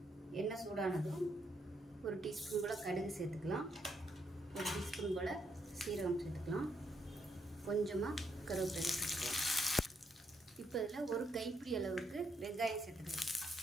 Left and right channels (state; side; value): normal; both; correlation 0.76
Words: எண்ணெய் சூடானதும் ஒரு டீஸ்பூன் போல் கடுகு சேர்த்துக்கலாம். ஒரு டீஸ்பூன் போல் சீரகம் சேர்த்துக்கலாம். கொஞ்சமாக கருவேப்பிலை சேர்த்துக்கலாம். இப்போ இதில் ஒரு கைப்பிடி அளவுக்கு வெங்காயம் சேர்த்துக்கலாம்.